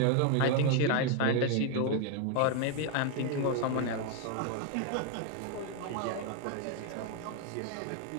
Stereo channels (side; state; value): both; different; correlation 0.01